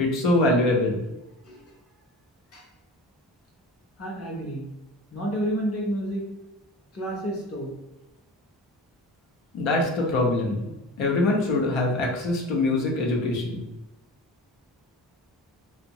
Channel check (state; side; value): normal; both; correlation 0.35